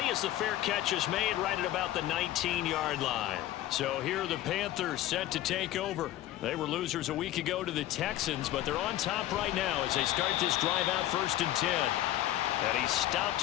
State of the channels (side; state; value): right; quieter; 14.0 dB